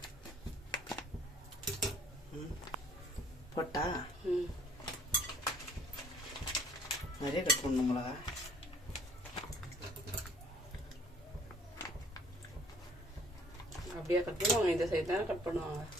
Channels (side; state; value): both; normal; correlation 0.57